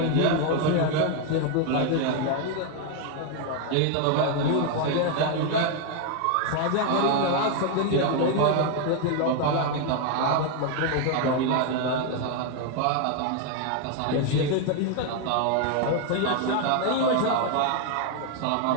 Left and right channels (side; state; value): both; different; correlation 0.01